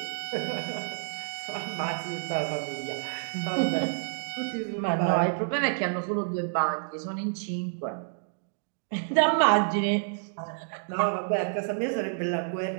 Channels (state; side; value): silent; left; digital silence